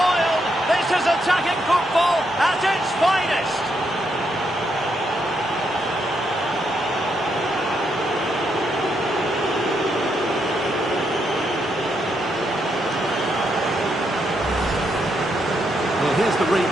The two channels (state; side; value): normal; both; correlation 0.78